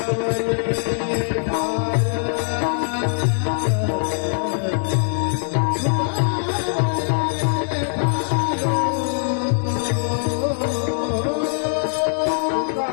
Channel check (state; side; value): silent; right; digital silence